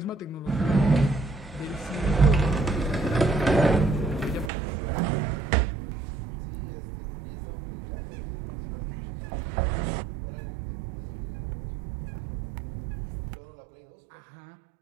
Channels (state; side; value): drops out; left; at 4.5 s